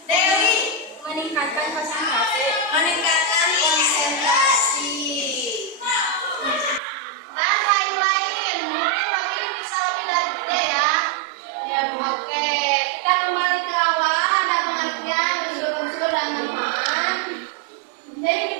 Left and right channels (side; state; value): left; drops out; at 6.8 s